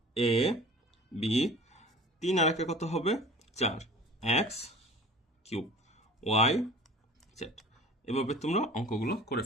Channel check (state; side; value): normal; both; correlation 0.43